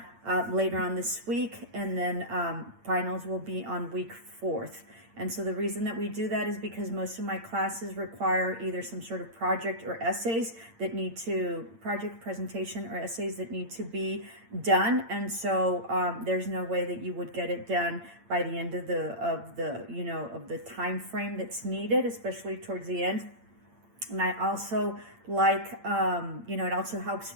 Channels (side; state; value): left; late; 8.8 ms